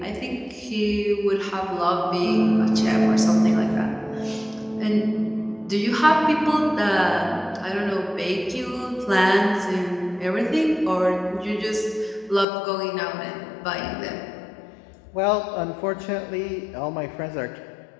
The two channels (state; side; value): drops out; right; at 12.5 s